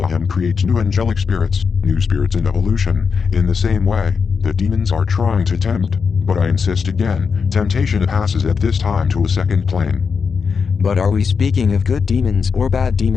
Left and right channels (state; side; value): quieter; right; 5.7 dB